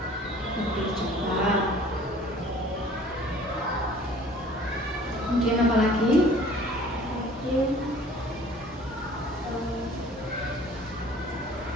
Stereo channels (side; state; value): both; normal; correlation 0.50